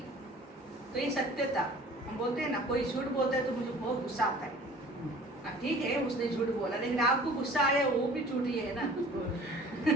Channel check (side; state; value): both; normal; correlation 0.47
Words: तो ये सत्यता, हम बोलते हैं ना, कोई झूठ बोलता है तो मुझे बहुत गुस्सा आता है, ठीक है उसने झूठ बोला, लेकिन आपको गुस्सा आया वो भी झूठ ही है ना।